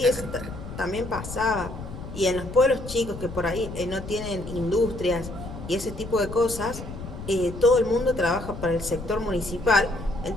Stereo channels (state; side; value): noise; left; rumble, 10 dB below the sound